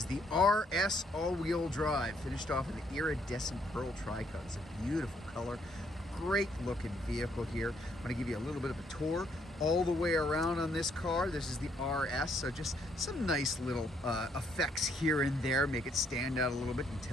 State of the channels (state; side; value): normal; both; correlation 0.70